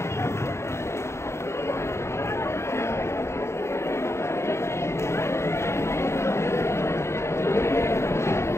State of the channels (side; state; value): right; late; 0.13 ms